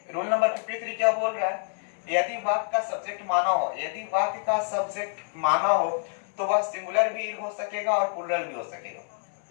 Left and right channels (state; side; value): silent; right; digital silence